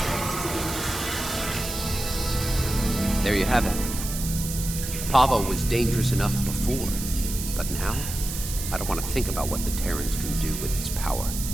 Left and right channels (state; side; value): noise; right; hiss, 6 dB below the sound